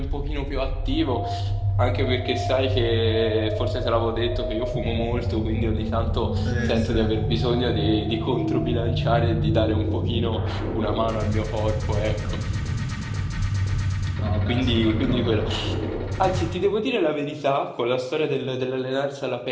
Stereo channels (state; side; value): identical; both; correlation 1.00